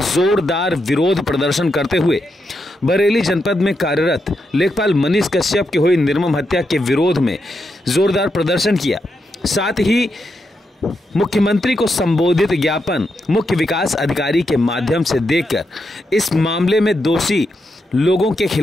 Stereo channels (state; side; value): normal; both; correlation 0.84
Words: जोरदार विरोध प्रदर्शन करते हुए बरेली जनपद में कार्यरत लेखपाल मनीष कश्यप की हुई निर्मम हत्या के विरोध में जोरदार प्रदर्शन किया। साथ ही मुख्यमंत्री को संबोधित ज्ञापन मुख्य विकास अधिकारी के माध्यम से देकर इस मामले में दोषी लोगों के